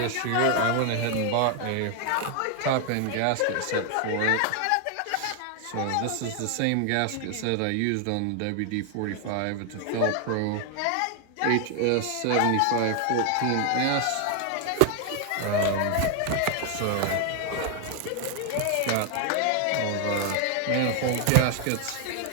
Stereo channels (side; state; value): both; different; correlation 0.00